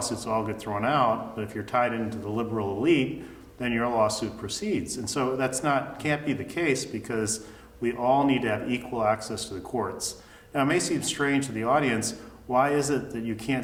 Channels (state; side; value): identical; both; correlation 1.00